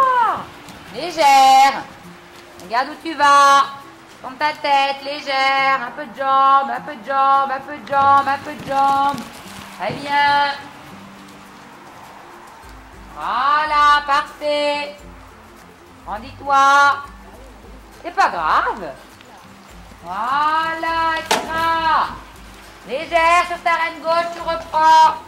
Légère. Regarde où tu vas. Tourne ta tête, légère. Un peu de jambes. Très bien. Voilà, parfait. Rendis-toi. C'est pas grave. Voilà, extra. Légère sur ta reine gauche, tu reprends.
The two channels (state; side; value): identical; both; correlation 1.00